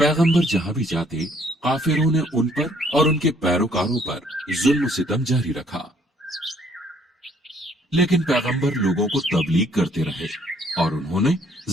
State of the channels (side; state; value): both; normal; correlation 0.64